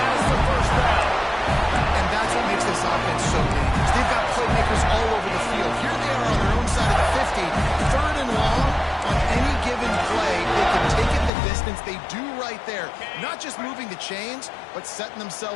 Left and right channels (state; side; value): drops out; right; at 11.3 s